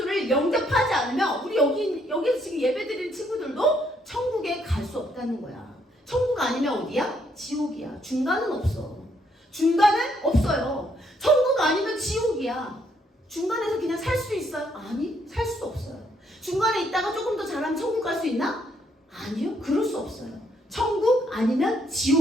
영접하지 않으면 우리 여기서 지금 예배드리는 친구들도 천국에 갈 수 없다는 거야. 천국 아니면 어디야? 지옥이야. 중간은 없어. 중간은 없어요. 천국 아니면 지옥이야. 중간에서 그냥 살 수 있어요? 아니, 살 수 없어요. 중간에 있다가 조금 더 잘하면 천국 갈 수 있나? 아니요, 그럴 수 없어요. 천국 아니면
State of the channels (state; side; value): normal; both; correlation 0.72